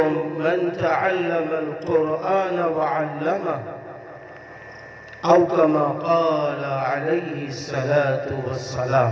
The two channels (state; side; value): identical; both; correlation 1.00